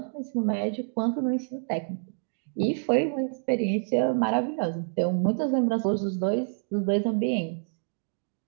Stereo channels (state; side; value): silent; left; digital silence